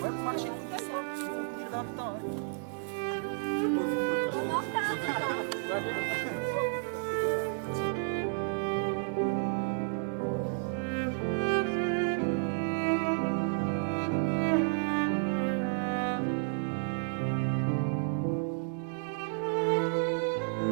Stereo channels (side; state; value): left; silent; 57 dB below the other